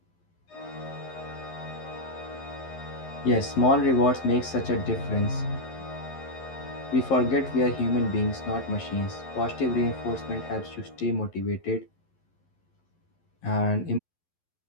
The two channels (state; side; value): late; right; 11 ms